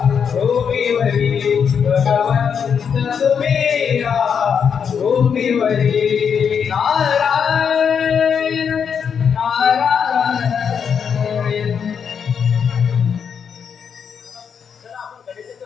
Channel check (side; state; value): right; quieter; 7.1 dB